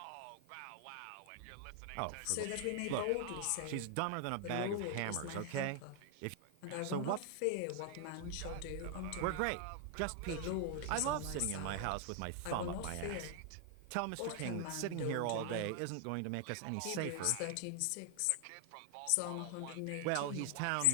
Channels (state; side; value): different; both; correlation 0.00